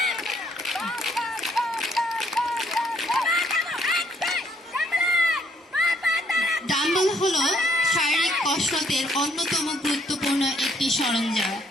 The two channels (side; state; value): both; normal; correlation 0.67